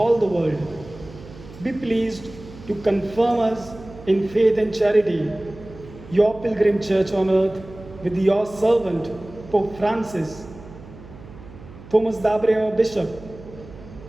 the world. Be pleased to confirm us in faith and charity, your pilgrim church on earth, with your servant, Pope Francis, Thomas Dabre, our bishop,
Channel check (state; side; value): noise; right; hum, 18 dB below the sound